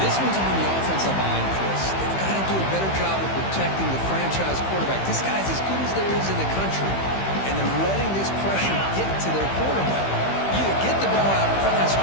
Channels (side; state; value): right; late; 15 ms